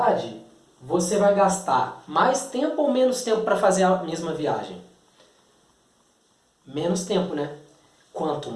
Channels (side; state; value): both; identical; correlation 1.00